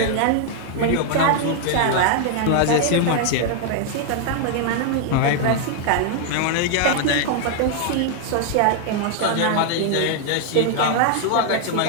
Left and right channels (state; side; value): different; both; correlation 0.00